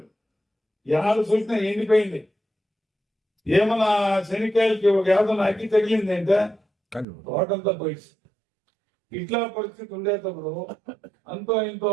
ఎవరు చూసినా ఎండిపోయింది. ఏమన్నా శనికాయలకి ఒక ఏదైనా అగ్గి తగిలింది అంటే తోటంతా పోయి. ఇట్లా పరిస్థితి ఉండేటప్పుడు అంతో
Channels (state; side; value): drops out; left; at 7.1 s